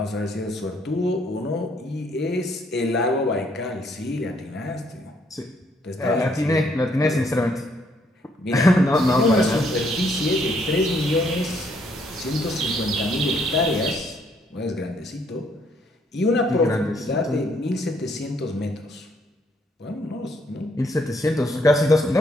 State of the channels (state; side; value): normal; both; correlation 0.69